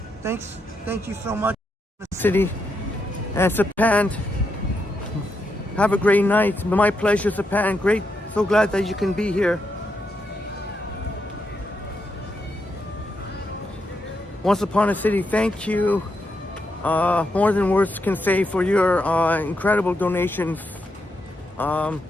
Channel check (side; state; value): both; normal; correlation 0.82